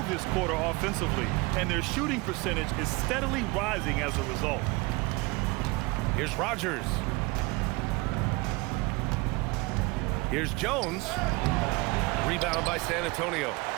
this quarter offensively. And their shooting percentage is steadily rising as a result. Here's Rogers. Here's Jones. Rebound by San Antonio.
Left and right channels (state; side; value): quieter; left; 24.6 dB